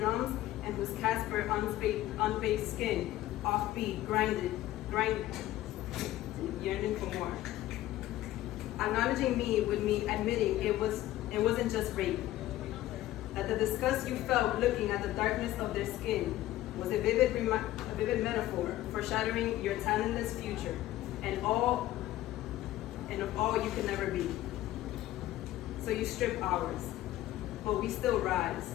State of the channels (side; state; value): right; quieter; 14.9 dB